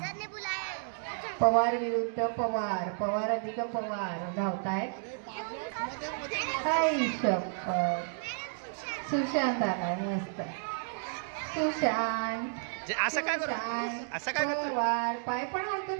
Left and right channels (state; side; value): silent; left; digital silence